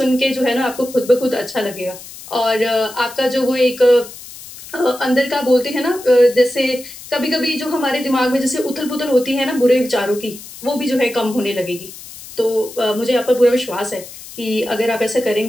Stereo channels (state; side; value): noise; left; hiss, 16 dB below the sound